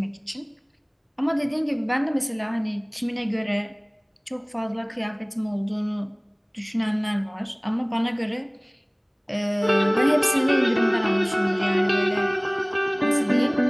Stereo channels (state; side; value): identical; both; correlation 1.00